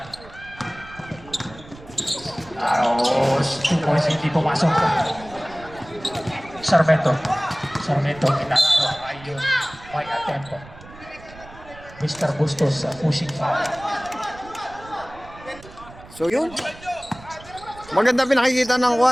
Aros, 2 points, hindi pumasok. Sarmiento, Inararo, ayun, may attempt. Mr. Bustos, pushing foul. So yun, maganda pinakikita ng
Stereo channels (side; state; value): right; noise; rumble, 19 dB below the sound